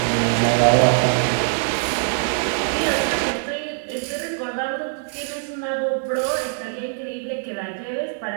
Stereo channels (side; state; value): left; silent; digital silence